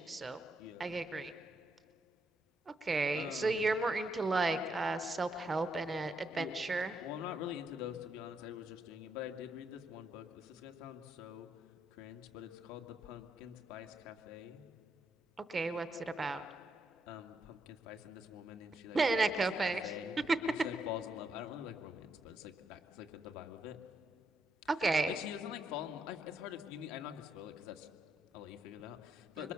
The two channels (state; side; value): normal; both; correlation 0.78